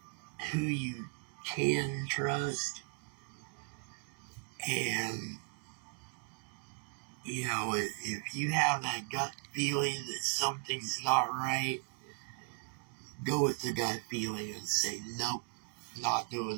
who you can trust, and you know, if you have that gut feeling that something's not right, go with the gut feeling and say, nope, not doing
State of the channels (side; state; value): left; quieter; 39.3 dB